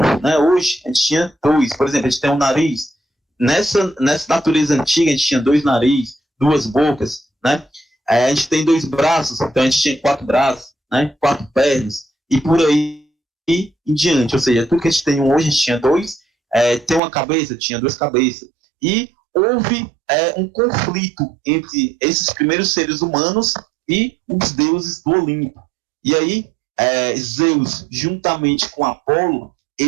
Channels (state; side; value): drops out; left; at 17.0 s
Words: né, hoje, a gente tinha dois. Por exemplo, a gente tem um nariz. Nessa natureza antiga, a gente tinha 2 narizes, 2 bocas, né? A gente tem 2 braços, então a gente tinha 4 braços, né? 4 pernas, e por aí em diante. Ou seja, tudo que a gente tem hoje, a gente tinha 2. Tem uma cabeça, tinha 2 cabeças. E houve um conflito entre esses primeiros seres humanos e os deuses do Olimpo. E aí, Zeus, juntamente com Apolo,